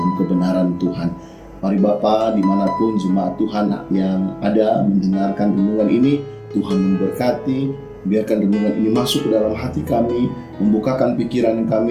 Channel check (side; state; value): both; identical; correlation 1.00